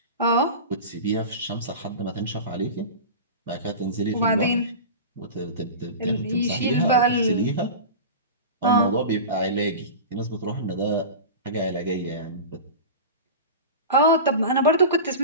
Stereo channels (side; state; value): both; inverted; correlation -0.30